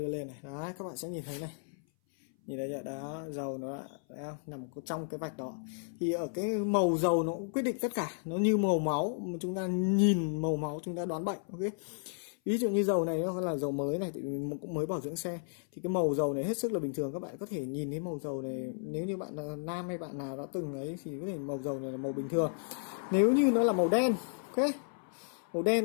lên này. Đó, các bạn sẽ nhìn thấy này. Nhìn thấy chưa? Đó, dầu nó đã nằm trong cái vạch đó. Thì ở cái màu dầu nó cũng quyết định tất cả, nó như màu máu, mà chúng ta nhìn màu máu chúng ta đoán bệnh. Ok, ví dụ như dầu này nó là dầu mới này thì mình cũng mới bảo dưỡng xe, thì cái màu dầu này hết sức là bình thường. Các bạn có thể nhìn thấy màu dầu này, nếu như bạn là nam hay bạn nào đã từng ấy thì có thể màu dầu này là màu bình thường. Nếu như nó là màu đen, ok, màu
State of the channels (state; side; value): silent; right; 56 dB below the other